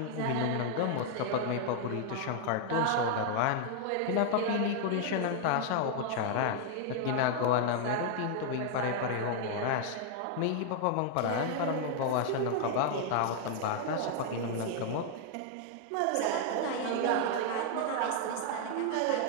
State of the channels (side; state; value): both; different; correlation 0.00